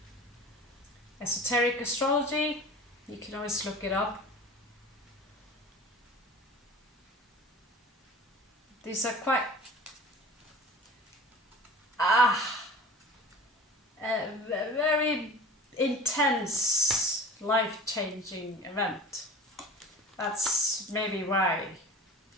Esoteric astrology, you can always look it up. These are quite a very intense, life-changing event. That's maybe why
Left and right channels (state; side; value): normal; both; correlation 0.39